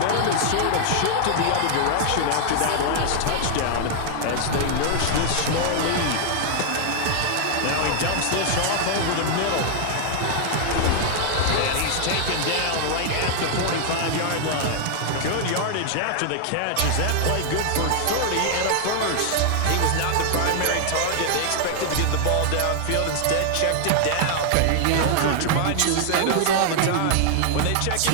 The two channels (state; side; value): different; both; correlation 0.00